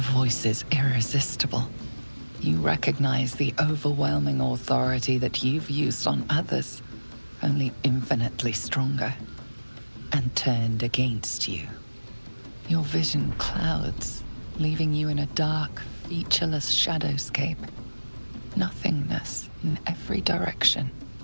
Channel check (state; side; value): inverted; both; correlation -1.00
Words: voice is irresistible. You recognize the overwhelming authority that you've used on others, only infinitely stronger, and turned against you. Your vision clouds, leaving you in a dark, featureless shadowscape. Nothingness in every direction.